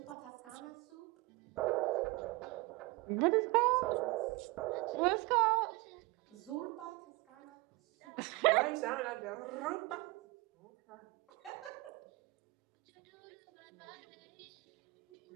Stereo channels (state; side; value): quieter; left; 23.5 dB